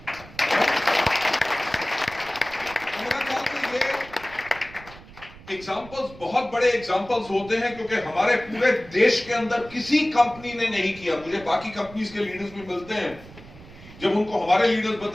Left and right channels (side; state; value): right; noise; rumble, 19 dB below the sound